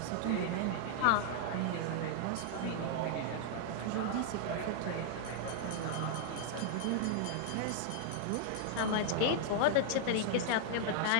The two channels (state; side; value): different; both; correlation -0.01